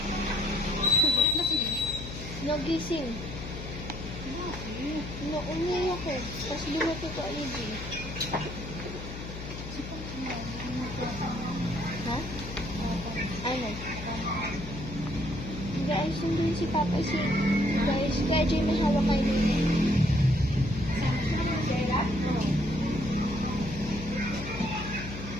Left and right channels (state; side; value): noise; left; hum, 9 dB below the sound